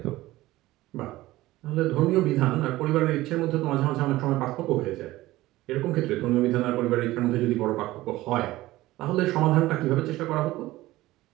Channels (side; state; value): left; quieter; 17.4 dB